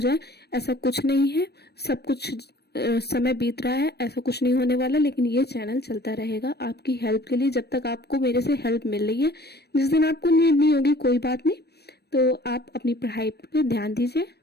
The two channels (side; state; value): right; late; 0.47 ms